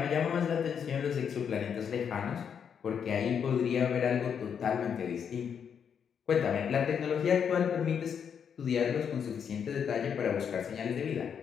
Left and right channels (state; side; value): quieter; right; 7.5 dB